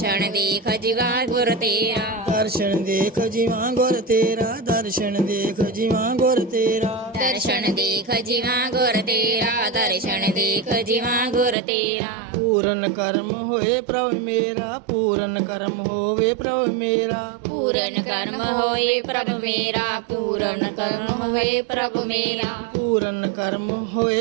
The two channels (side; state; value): left; drops out; at 11.6 s